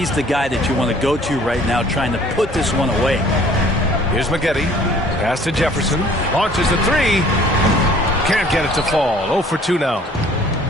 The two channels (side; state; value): both; normal; correlation 0.54